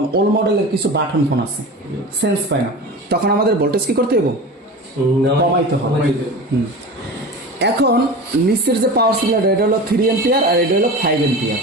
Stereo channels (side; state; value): both; normal; correlation 0.32